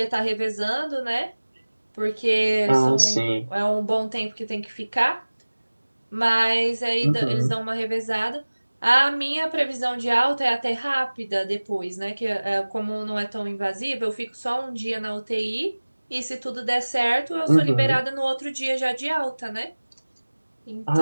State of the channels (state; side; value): inverted; both; correlation -1.00